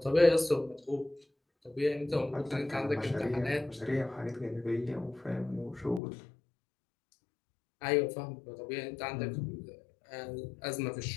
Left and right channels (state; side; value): drops out; right; at 6.0 s